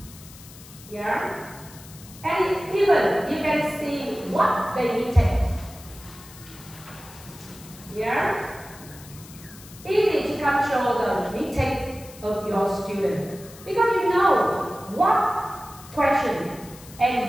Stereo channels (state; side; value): noise; left; hiss, 19 dB below the sound